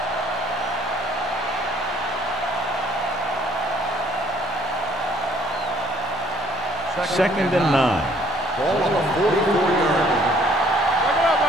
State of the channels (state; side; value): normal; both; correlation 0.61